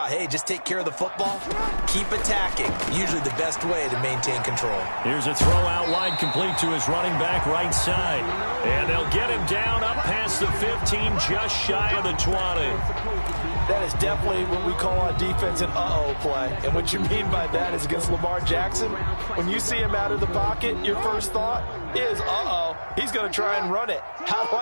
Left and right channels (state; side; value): inverted; both; correlation -1.00